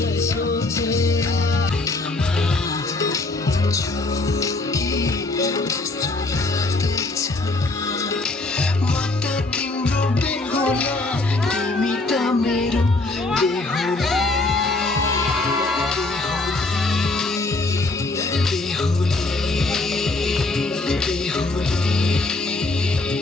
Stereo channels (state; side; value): quieter; right; 3.1 dB